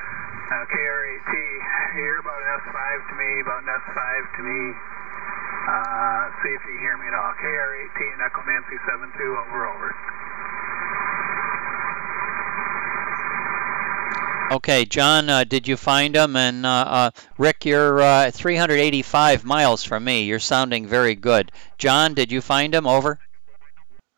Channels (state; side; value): quieter; left; 31.8 dB